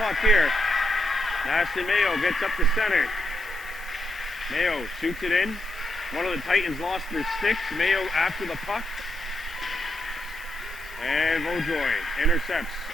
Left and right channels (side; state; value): both; normal; correlation 0.81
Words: here. Ashton Mayo gets up the center. Mayo shoots it in. One of the Titans lost their sticks. Mayo after the puck. And Vaudreuil intercepts.